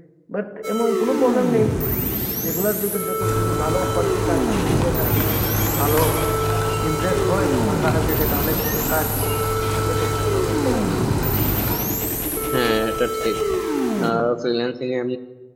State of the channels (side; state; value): both; identical; correlation 1.00